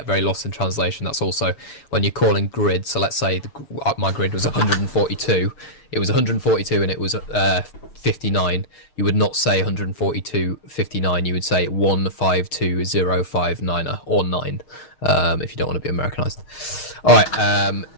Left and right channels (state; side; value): late; right; 6.5 ms